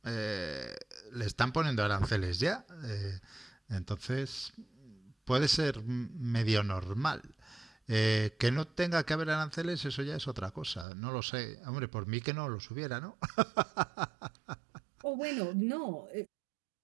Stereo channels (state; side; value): drops out; left; at 10.9 s